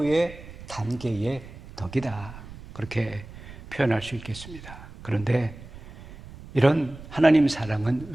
단계의 덕이다 그렇게 표현할 수 있겠습니다. 그런데 이런 하나님 사랑은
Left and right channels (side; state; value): right; noise; rumble, 16 dB below the sound